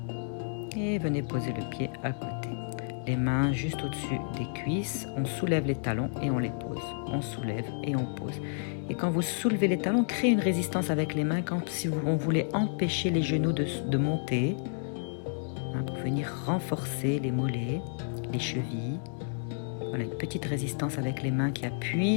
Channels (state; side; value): silent; right; 57 dB below the other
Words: Et venez poser le pied à côté. Les mains juste au-dessus des cuisses, on soulève les talons et on les pose. On soulève et on pose. Et quand vous soulevez les talons, créez une résistance avec les mains, comme si on voulait empêcher les genoux de monter, pour venir renforcer les mollets, les chevilles. Voilà, une petite résistance avec les mains qui